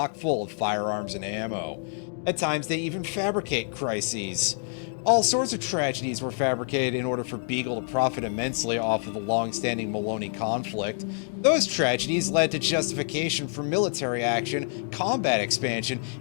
full of firearms and ammo. At times, they even fabricate crises. All sorts of tragedies were fabricated in order for Beagle to profit immensely off of the long-standing Maloney conflict. Those tragedies led to justification for military action, combat expansion,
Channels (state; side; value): silent; right; 60 dB below the other